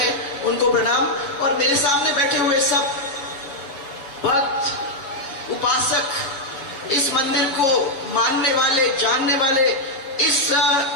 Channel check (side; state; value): right; late; 7.2 ms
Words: उनको प्रणाम, और मेरे सामने बैठे हुए सब भक्त, उपासक, इस मंदिर को मानने वाले, जानने वाले, इस